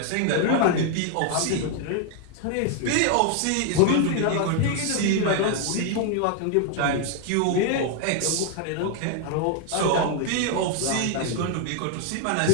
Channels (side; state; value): both; different; correlation 0.01